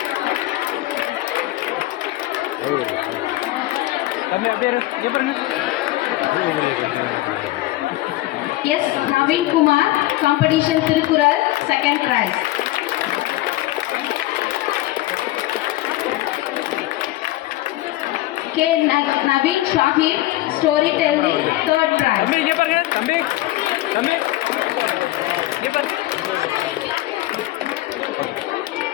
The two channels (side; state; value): right; quieter; 17.1 dB